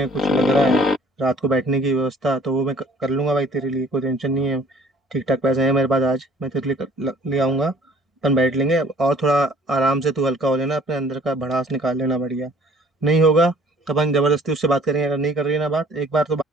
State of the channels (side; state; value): both; normal; correlation 0.55